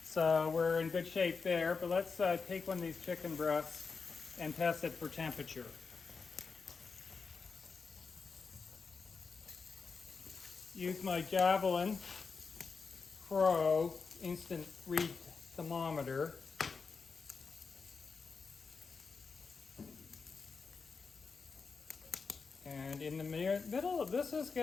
So we're in good shape there. But let's take one of these chicken breasts and test it for temperature. Use my Javelin Pro instant read thermometer. And in the middle of this is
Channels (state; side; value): quieter; right; 4.9 dB